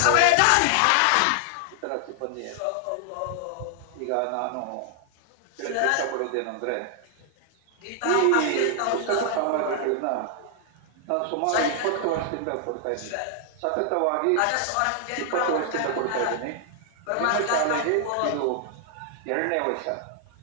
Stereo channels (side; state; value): both; different; correlation 0.00